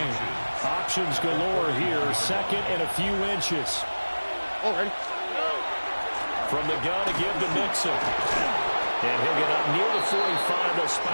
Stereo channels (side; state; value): both; inverted; correlation -1.00